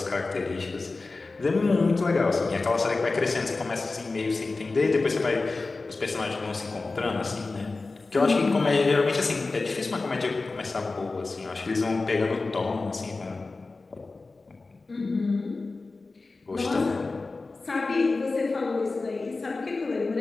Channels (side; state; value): right; quieter; 3.6 dB